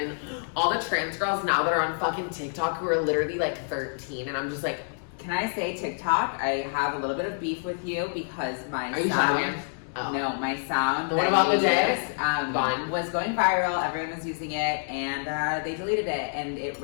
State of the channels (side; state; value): right; silent; digital silence